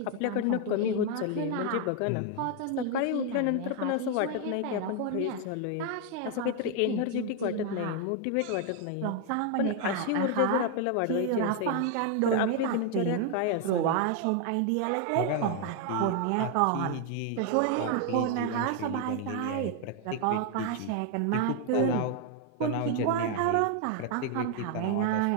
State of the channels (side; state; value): both; different; correlation 0.01